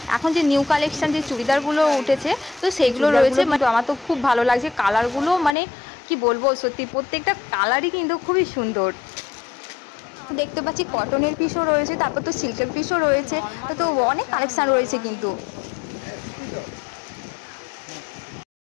এখন যে নিউ কালেকশন যে চুড়িদারগুলো উঠেছে, তো সেগুলো রয়েছে। আমার তো খুব ভালো লাগছে কালারগুলো, মানে কি বলবো, সত্যি প্রত্যেকটা কালারই কিন্তু খুবই সুন্দর। দেখতে পাচ্ছি কটনের পিসও রয়েছে, তারপর তো সিল্কের পিসও রয়েছে। তো অনেক কালেকশন রয়েছে কিন্তু।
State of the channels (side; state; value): right; drops out; at 5.6 s